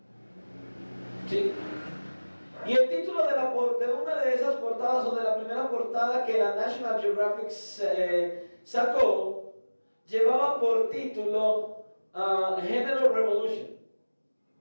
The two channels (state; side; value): inverted; both; correlation -1.00